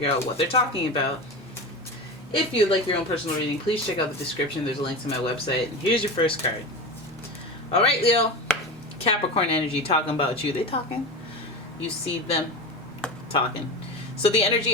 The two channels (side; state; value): both; normal; correlation 0.26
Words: out what they're talking about. If you'd like your own personal reading, please check out the description. There's a link to my website. And here's your first card. All right, Leo. Capricorn energy talking about you. They talking. You see them talking. So the